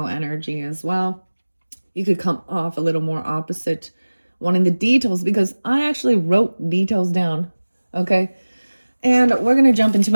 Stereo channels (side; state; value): both; inverted; correlation -1.00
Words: energy as well. You could come off a little more opposite, wanting the details, because I actually wrote details down. Okay, and we're gonna jump into